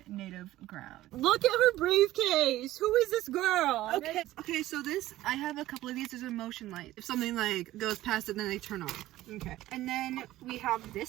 native ground. Look at her briefcase. Who is this girl? Okay, so this, I have a couple of these. There's a motion light. If something like goes past it, then they turn on. Okay. And then we have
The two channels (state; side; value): quieter; left; 15.5 dB